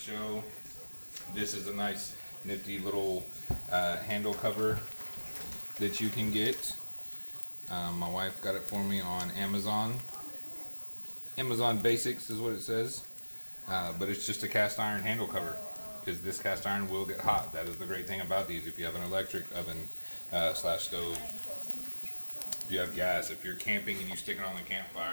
This is a nice nifty little handle cover that you can get. My wife got it for me on Amazon. Amazon Basics is what it says, but it's just a cast iron handle cover, because this cast iron will get hot. That is the great thing about these. If you have an electric oven / stove, if you have gas, if you're camping and you stick it on the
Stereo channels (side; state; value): both; inverted; correlation -1.00